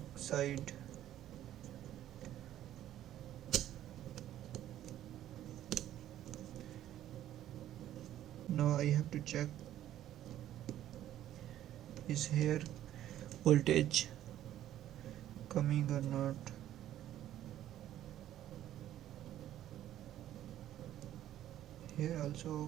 side. Now I have to check, is here voltage coming or not. Here also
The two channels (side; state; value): left; quieter; 12.3 dB